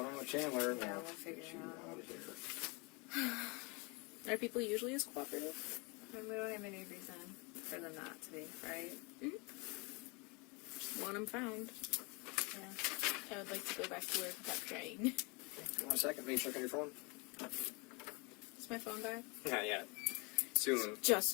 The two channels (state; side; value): quieter; right; 29.6 dB